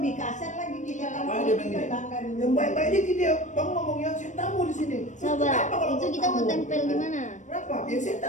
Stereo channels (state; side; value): late; right; 0.35 ms